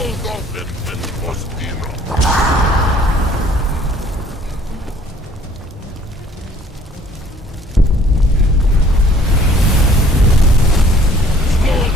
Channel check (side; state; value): both; normal; correlation 0.57